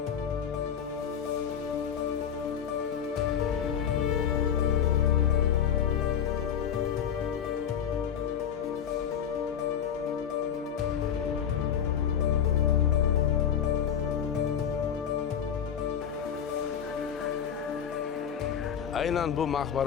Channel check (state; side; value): quieter; right; 8.6 dB